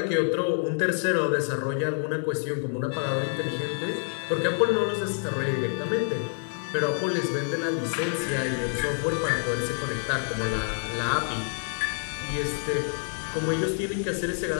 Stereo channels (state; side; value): silent; right; digital silence